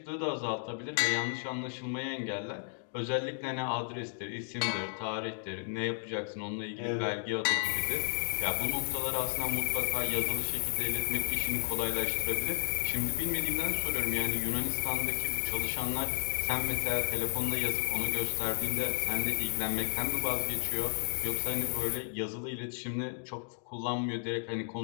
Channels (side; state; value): right; silent; digital silence